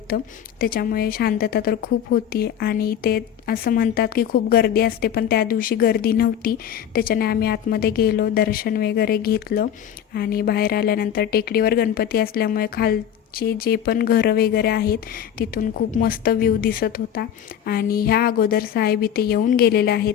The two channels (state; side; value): quieter; right; 9.5 dB